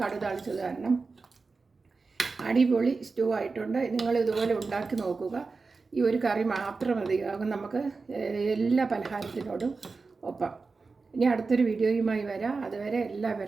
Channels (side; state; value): left; quieter; 4.2 dB